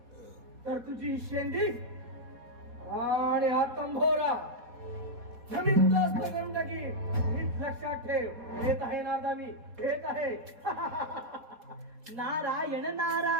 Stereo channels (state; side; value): late; left; 4.2 ms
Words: तर तुझी शेंडी आणि हा तंभोरा जमीनदोस्त करून टाकीन. नीट लक्षात ठेव. येत आहे नारदा, मी येत आहे. नारायण